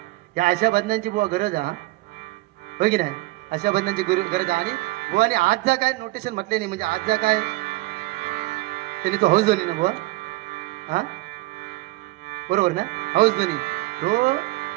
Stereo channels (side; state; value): left; quieter; 20.1 dB